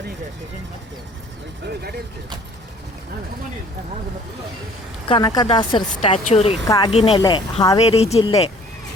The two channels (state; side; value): normal; both; correlation 0.54